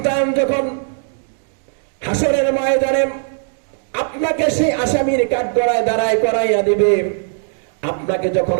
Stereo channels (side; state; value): left; silent; 67 dB below the other